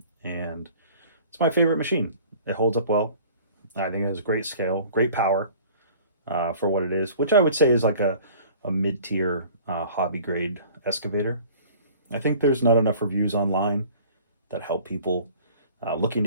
and it's my favorite machine. It holds up well. I think it has great scale, great power for what it is, which I would say is like a mid-tier hobby grade excavator. I think there's not enough reviews online that help people looking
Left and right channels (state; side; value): inverted; both; correlation -0.47